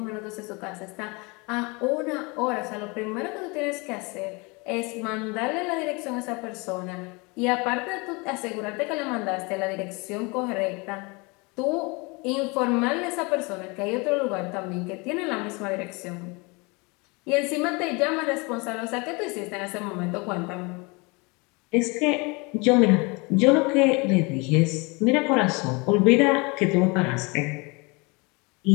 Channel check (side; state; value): right; quieter; 28.1 dB